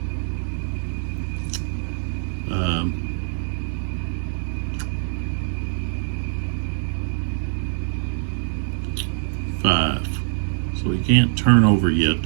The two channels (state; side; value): silent; left; digital silence